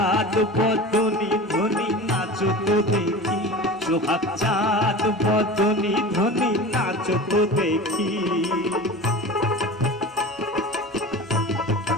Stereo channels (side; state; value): both; normal; correlation 0.33